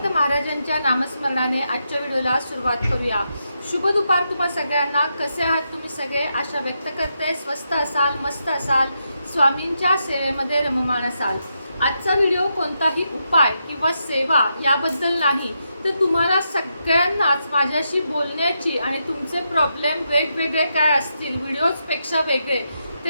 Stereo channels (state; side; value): inverted; both; correlation -0.83